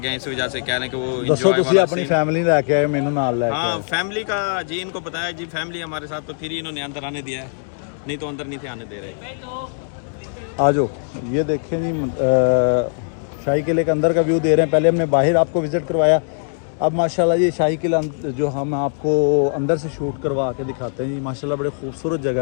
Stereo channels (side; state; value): right; silent; digital silence